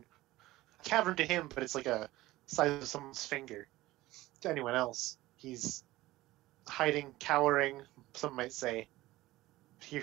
A cavern to him, but it's like a size of someone's finger. To anyone else, he's hiding, cowering, some might say. Here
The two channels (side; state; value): left; quieter; 17.5 dB